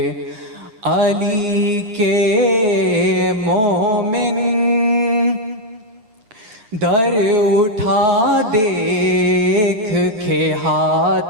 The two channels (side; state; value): left; late; 9.7 ms